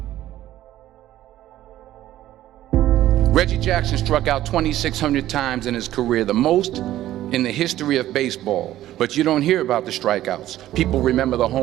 Reggie Jackson struck out 2,600 times in his career, the most in the history of baseball. But you don't hear about the strikeouts. People remember the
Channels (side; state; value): left; quieter; 13.8 dB